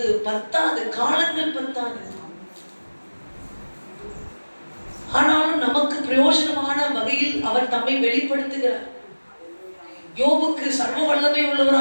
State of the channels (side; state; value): both; inverted; correlation -1.00